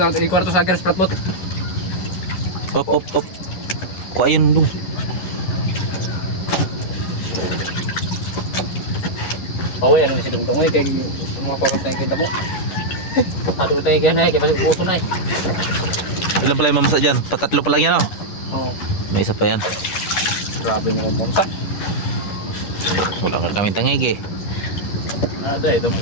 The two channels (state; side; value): late; right; 11 ms